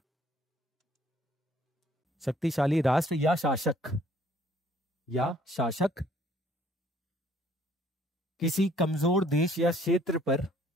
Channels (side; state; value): both; normal; correlation 0.60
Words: या शासक किसी कमजोर देश या क्षेत्र